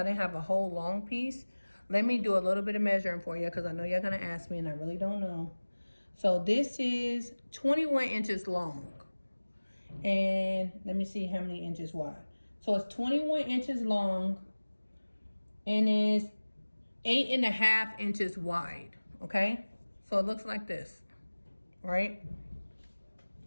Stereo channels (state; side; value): inverted; both; correlation -1.00